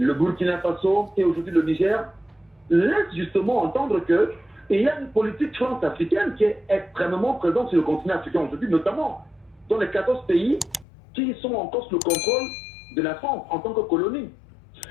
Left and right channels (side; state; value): right; drops out; at 10.9 s